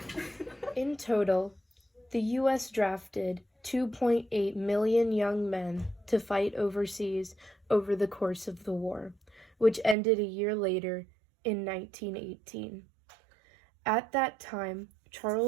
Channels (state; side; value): drops out; left; at 10.0 s